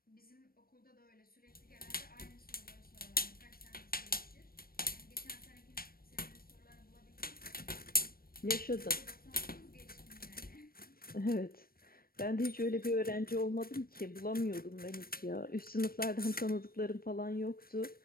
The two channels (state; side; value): late; right; 0.43 ms